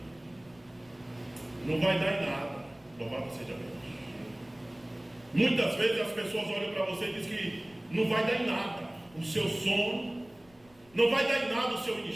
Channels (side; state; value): left; noise; rumble, 29 dB below the sound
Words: não vai dar em nada. Louvado seja Deus. Muitas vezes as pessoas olham para você e dizem que não vai dar em nada o seu sono, não vai dar em nada o seu